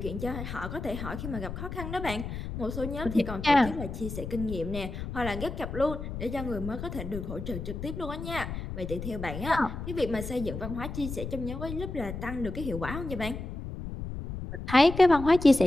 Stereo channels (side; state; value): left; noise; rumble, 7 dB below the sound